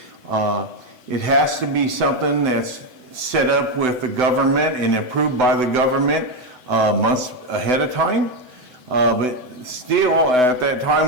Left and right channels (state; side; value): late; left; 7.9 ms